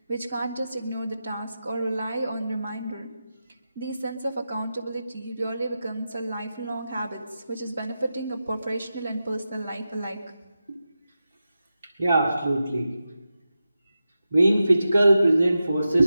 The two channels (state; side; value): inverted; both; correlation -0.91